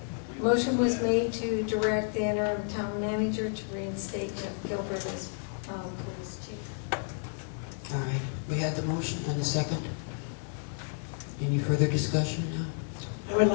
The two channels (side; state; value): right; silent; 57 dB below the other